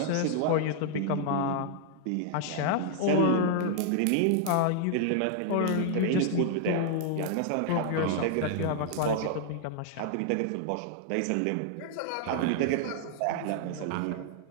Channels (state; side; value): different; both; correlation 0.00